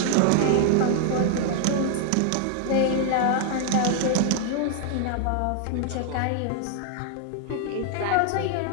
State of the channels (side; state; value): both; different; correlation 0.00